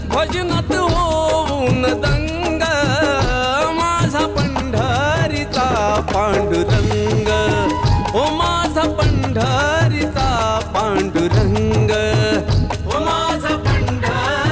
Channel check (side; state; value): both; identical; correlation 1.00